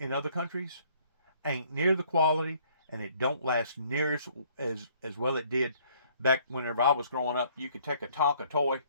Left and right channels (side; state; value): both; inverted; correlation -0.61